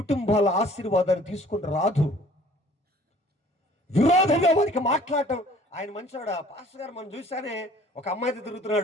ఆశీర్వాదాన్ని తీసుకుని రాదు. విరోధంగా వారికి మాట్లాడటం. ఆయన మంచివాడా? పాస్టర్ గారు మనం చూసానే ఒక అమ్మాయితో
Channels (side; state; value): both; normal; correlation 0.54